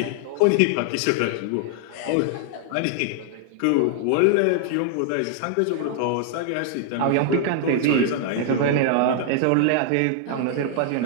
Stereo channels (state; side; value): different; both; correlation 0.00